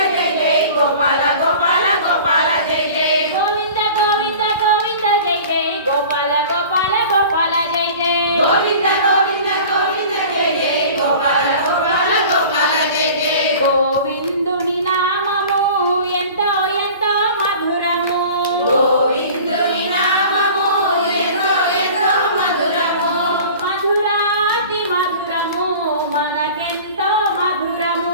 జై జై గోపాల గోపాల గోపాల జై జై గోవింద గోవింద గోవింద జై జై గోపాల గోపాల గోపాల జై జై గోవింద గోవింద గోవింద జై జై గోపాల గోపాల గోపాల జై జై గోవిందుని నామము ఎంతో ఎంతో మధురము గోవిందుని నామము ఎంతో ఎంతో మధురము మధురాతి మధురము మనకెంతో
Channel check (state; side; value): inverted; both; correlation -0.41